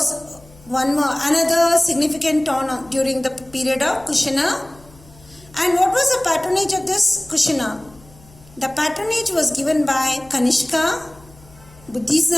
another significant town during the period of Kushana. And what was the patronage of this Kushana? The patronage was given by Kanishka,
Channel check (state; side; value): noise; left; hum, 25 dB below the sound